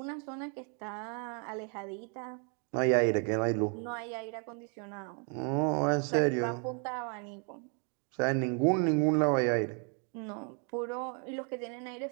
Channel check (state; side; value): quieter; left; 39.2 dB